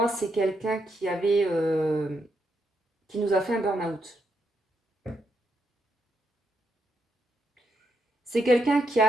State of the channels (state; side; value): normal; both; correlation 0.80